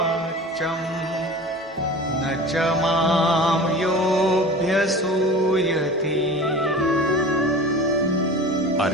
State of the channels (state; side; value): normal; both; correlation 0.37